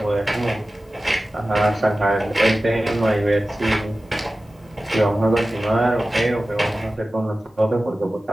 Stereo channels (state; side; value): normal; both; correlation 0.95